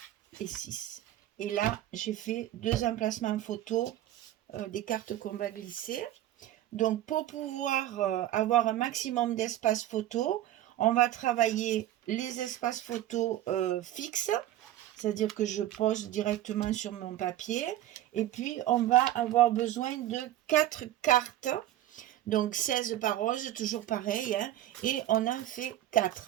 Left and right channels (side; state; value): left; quieter; 13.4 dB